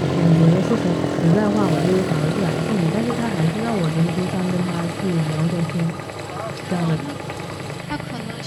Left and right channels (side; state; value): both; identical; correlation 1.00